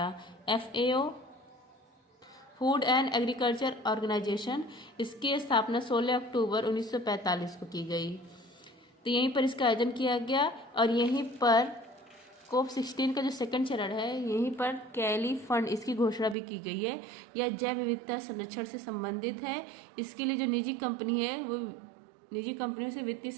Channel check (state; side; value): drops out; left; at 16.4 s